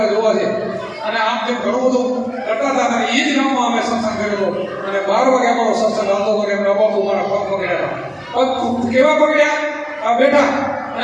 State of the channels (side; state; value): both; identical; correlation 1.00